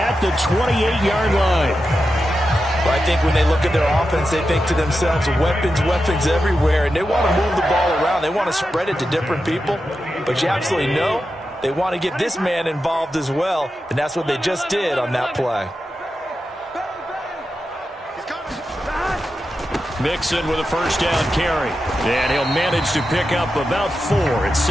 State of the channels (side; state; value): both; normal; correlation 0.90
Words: the 28-yard line. Well, I think when they look at their offense, they think to themselves, weapons, weapons everywhere, and they want to move the ball around. They want to spread it to different people. But you absolutely know they want to get this man involved as well, and that's what they just did on that play. Mixon with a first down carry. And he'll manage to pick up about 4. It's